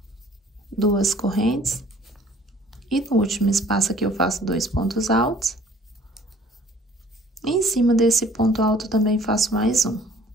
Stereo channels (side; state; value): both; normal; correlation 0.54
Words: Duas correntes, e no último espaço aqui eu faço 2 pontos altos. E em cima desse ponto alto também faço mais um,